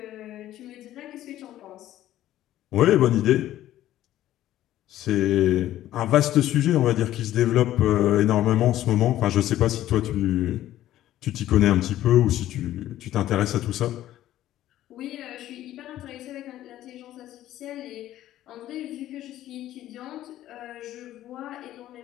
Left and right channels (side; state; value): right; quieter; 13.5 dB